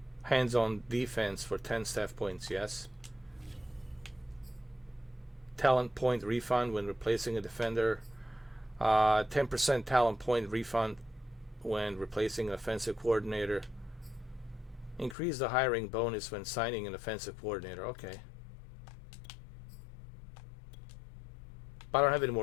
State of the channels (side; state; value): right; drops out; at 15.2 s